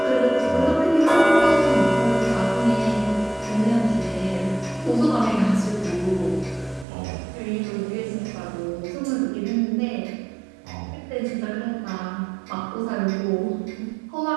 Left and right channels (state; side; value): drops out; left; at 6.9 s